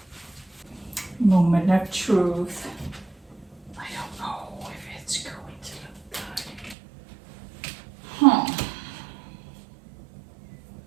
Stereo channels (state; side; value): drops out; left; at 6.8 s